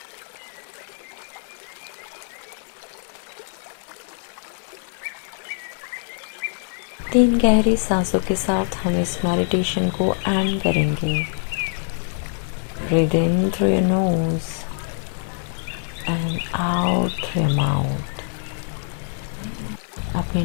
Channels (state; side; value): silent; right; 63 dB below the other